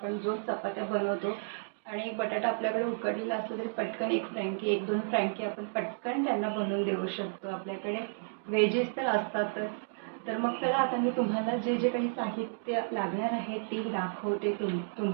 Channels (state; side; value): silent; left; digital silence